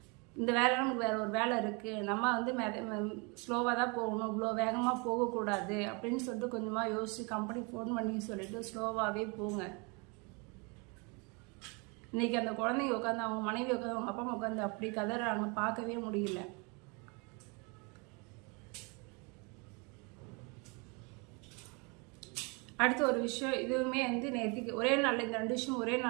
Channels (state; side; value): quieter; left; 31.1 dB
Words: இந்த வேலை நமக்கு வேற ஒரு வேலை இருக்கு. நம்ம ஸ்லோவாக தான் போகணும், இவ்வளோ வேகமாக போகக்கூடாது அப்படின்னு சொல்லிட்டு கொஞ்சமாக யோசிச்சு கம்பெனி ஃபோன் பண்ணி சொல்லிட்டு ஸ்லோவாகவே போங்க. இன்னைக்கு அந்த குழந்தைங்க உட்காந்து அவங்க மனைவி உட்காந்து அவங்க அப்பா அம்மா உட்காந்து அப்படி கதறாங்க, பார்க்கவே முடியல. அடுத்த ஒரு விஷயம், இதுவுமே நேற்றுக்கு ஒரே நாளில் இந்த 2 விஷயம் ஒரே